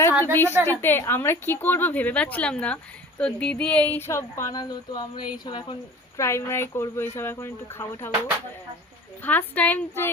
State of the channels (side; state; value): both; normal; correlation 0.41